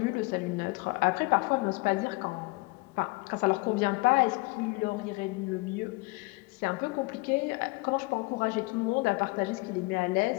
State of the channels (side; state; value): right; quieter; 25.2 dB